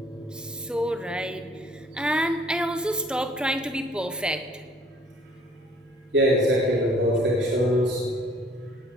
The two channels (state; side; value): normal; both; correlation 0.57